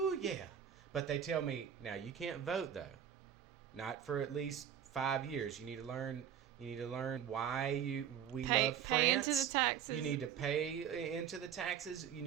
yeah. But they tell me, now you can't vote, though. Not for at least 5 years. You need to learn why we love France. Into the taxes. You need to pay into the taxes. You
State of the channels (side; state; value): left; quieter; 9.1 dB